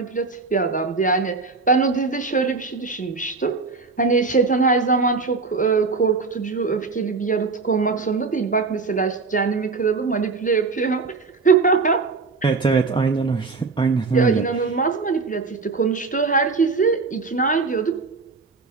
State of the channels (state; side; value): quieter; left; 4.3 dB